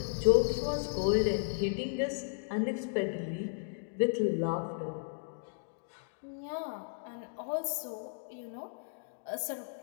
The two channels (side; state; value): right; silent; digital silence